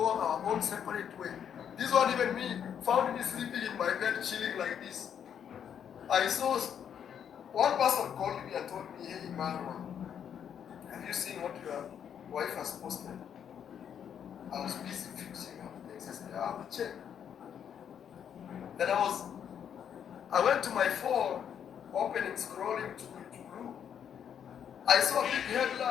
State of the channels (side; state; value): right; quieter; 8.5 dB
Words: our own separate way. This one, even me, found me sleeping in my bed, chilling like this. I saw one person called me and told me, hey, Iammarwa, have you seen what your wife has posted? I was busy fixing up things. I said, I will check. Then I went to my phone, opening, scrolling to blue. I saw a big